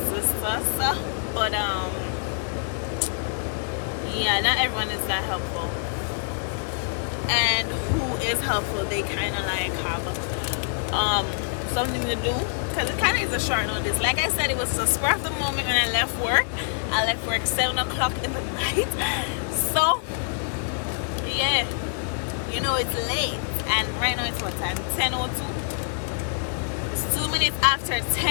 us, but yeah, not everyone is that helpful, and who is helpful, they kind of like have something to do, because it kind of is a short notice. Like I said, it was a spur of the moment when I left work. I left work 7 o'clock in the night, so yeah, you know, it's late, and right now it's what time? 10:02. It's 2 minutes after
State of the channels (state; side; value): silent; right; digital silence